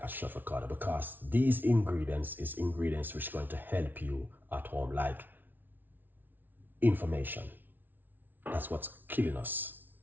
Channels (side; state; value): left; late; 0.089 ms